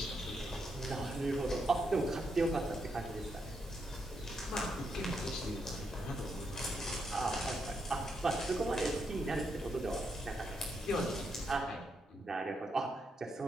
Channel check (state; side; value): normal; both; correlation 0.80